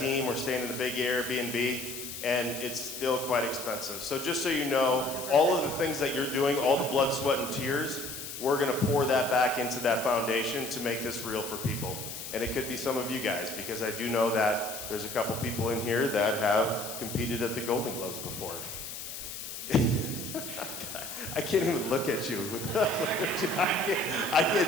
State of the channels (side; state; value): left; noise; hiss, 8 dB below the sound